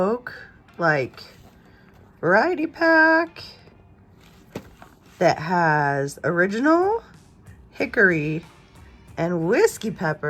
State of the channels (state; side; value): identical; both; correlation 1.00